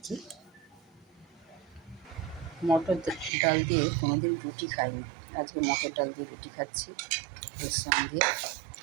কি। মটর ডাল দিয়ে কোনোদিন রুটি খাইনি, আজকে মটর ডাল দিয়ে রুটি খাচ্ছি। এর সঙ্গে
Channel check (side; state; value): left; drops out; at 3.3 s